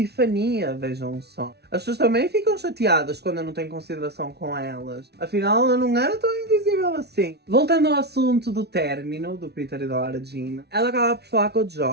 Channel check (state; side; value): late; left; 0.48 ms